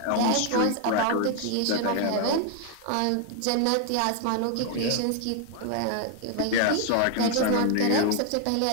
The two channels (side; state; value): both; different; correlation 0.00